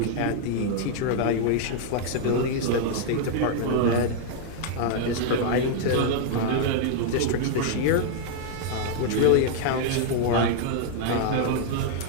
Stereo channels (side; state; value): both; different; correlation -0.01